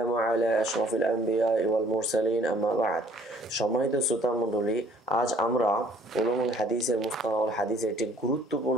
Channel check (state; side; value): normal; both; correlation 0.58